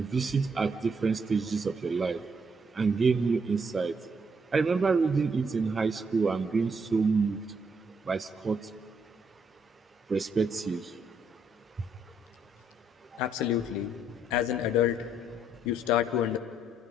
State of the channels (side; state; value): both; normal; correlation 0.72